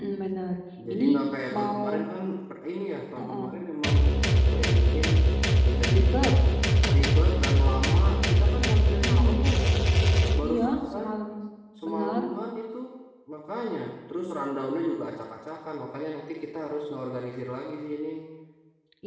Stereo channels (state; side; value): identical; both; correlation 1.00